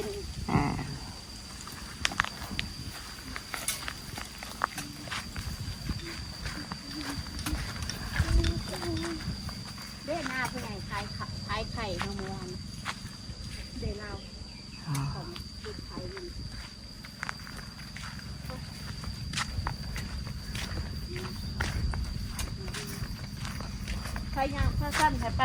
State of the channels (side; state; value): both; identical; correlation 1.00